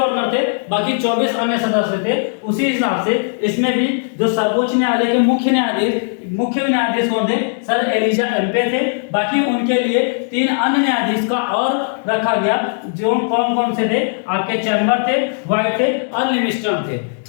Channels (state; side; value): silent; right; digital silence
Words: थे, बाकी 24 अन्य सदस्य थे। उसी हिसाब से इसमें भी जो सर्वोच्च न्यायालय के मुख्य न्यायाधीश कौन थे? सर एलिजा एम्पे थे। बाकी उनके लिए 3 अन्य न्यायाधीश का और रखा गया, जो कौन से थे? आपके चैम्बर थे, व्हाइट थे और लिमिस्टर थे।